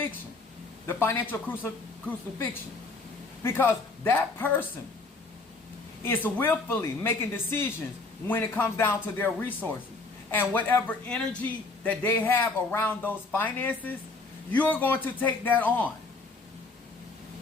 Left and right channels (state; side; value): quieter; right; 3.6 dB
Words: the financial crucifixion. Because that person is willfully making decisions when it comes down to their resources. And whatever energy that they have around those finances, you're going to take that on.